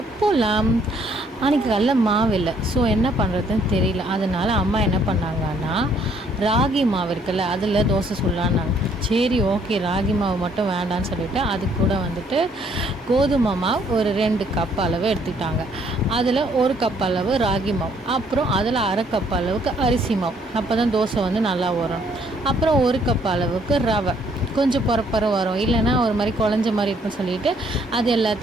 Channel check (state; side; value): normal; both; correlation 0.66